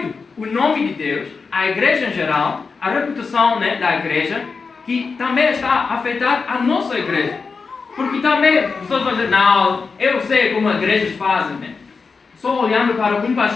o nome de Deus, a igreja em geral, a reputação, né, da igreja, que também está a afetar a nossa igreja. Porque também as pessoas vão dizer: não, eu sei como as igrejas fazem, né? Só olhando para um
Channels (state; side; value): quieter; right; 4.8 dB